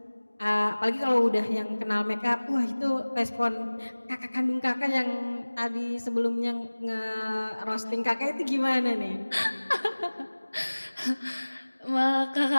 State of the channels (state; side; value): inverted; both; correlation -1.00